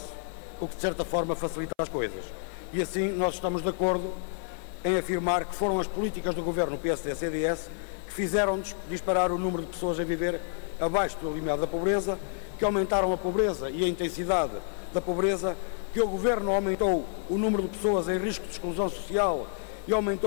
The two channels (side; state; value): right; silent; 55 dB below the other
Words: o que de certa forma facilita as coisas. E assim nós estamos de acordo em afirmar que foram as políticas do Governo PSD-CDS que fizeram disparar o número de pessoas a viver abaixo do limiar da pobreza, que aumentaram a pobreza e a intensidade da pobreza, que o Governo aumentou o número de pessoas em risco de exclusão social e